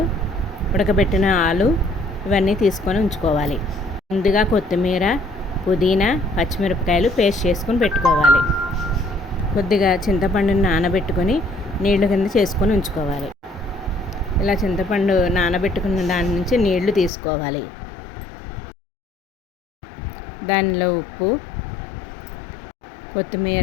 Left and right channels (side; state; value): right; drops out; at 17.1 s